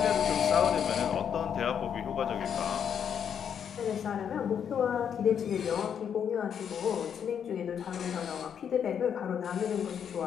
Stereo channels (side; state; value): right; quieter; 8.1 dB